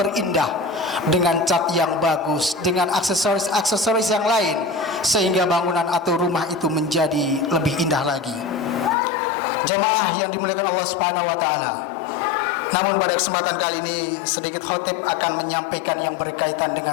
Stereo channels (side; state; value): right; drops out; at 9.0 s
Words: dengan cat yang bagus, dengan aksesoris-aksesoris yang lain, sehingga bangunan atau rumah itu menjadi lebih indah lagi. Jemaah yang dimuliakan Allah Subhanahu wa taala, namun pada kesempatan kali ini sedikit khatib akan menyampaikan yang berkaitan